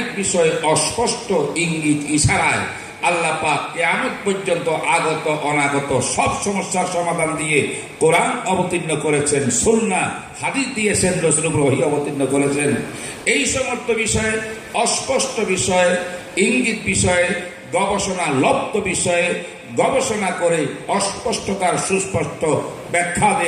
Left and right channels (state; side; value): identical; both; correlation 1.00